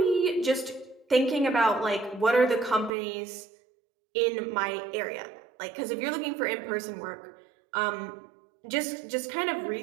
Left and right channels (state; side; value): drops out; left; at 2.9 s